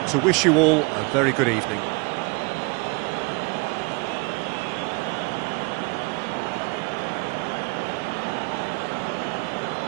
to wish you all a very good evening.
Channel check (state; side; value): quieter; left; 29.2 dB